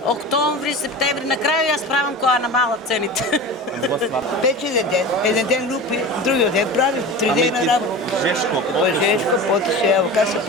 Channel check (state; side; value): normal; both; correlation 0.32